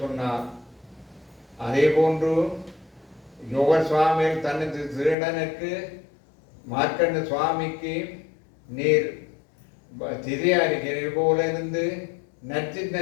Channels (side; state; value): right; drops out; at 5.2 s